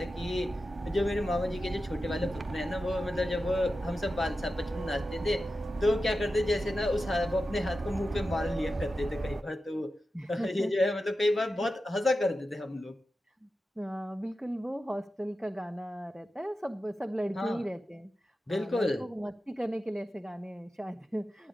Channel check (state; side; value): normal; both; correlation 0.92